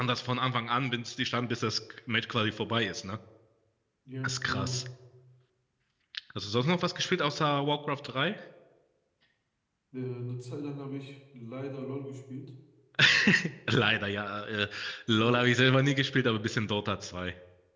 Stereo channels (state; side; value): identical; both; correlation 1.00